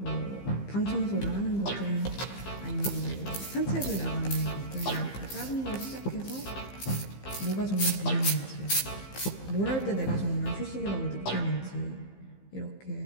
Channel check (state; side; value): late; right; 15 ms